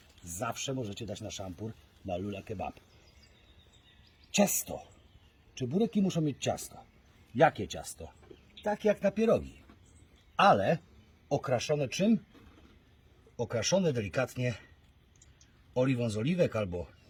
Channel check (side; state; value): both; identical; correlation 1.00